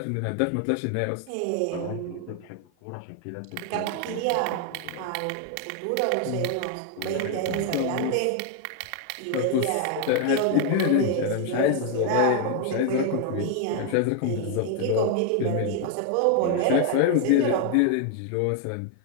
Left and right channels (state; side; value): different; both; correlation 0.00